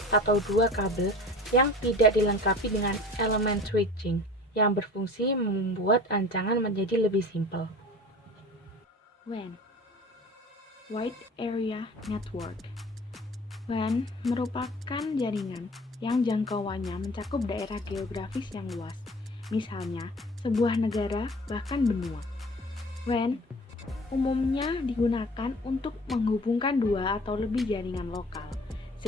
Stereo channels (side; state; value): both; normal; correlation 0.43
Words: atau dua kabel yang tidak dilengkapi dengan elemen switching yang berfungsi membuat rancangan menjadi lebih simpel. WAN, Wide Area Network. WAN merupakan jaringan yang jangkauannya mencakup daerah geografis yang luas, misalnya sebuah negara bahkan benua. WAN umumnya digunakan untuk menghubungkan dua atau lebih jaringan lokal,